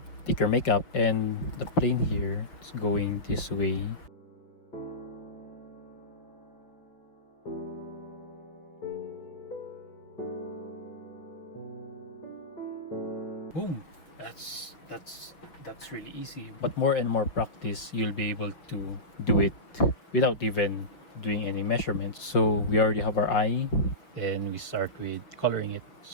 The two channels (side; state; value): right; late; 5.9 ms